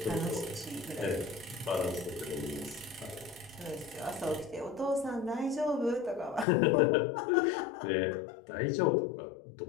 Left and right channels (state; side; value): drops out; right; at 6.5 s